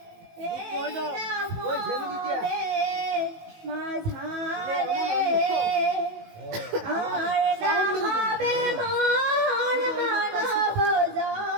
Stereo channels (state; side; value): late; left; 19 ms